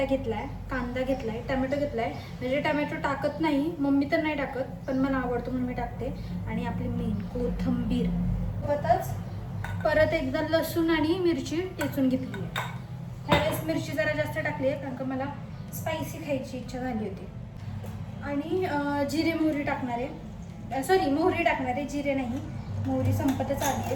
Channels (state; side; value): identical; both; correlation 1.00